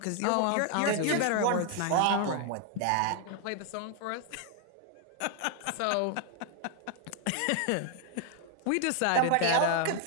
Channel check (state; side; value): different; both; correlation 0.00